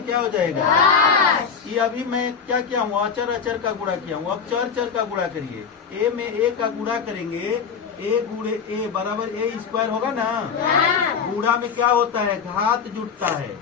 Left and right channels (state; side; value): quieter; right; 6.4 dB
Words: हो जाएगा। ये अभी मैं क्या किया हूँ, अचर अचर का गुणा किया हूँ। अब चर चर का गुणा करिए। a में a का गुणा करेंगे, a गुणे a बराबर a² होगा ना। गुणा में क्या होता है, घात जुड़ता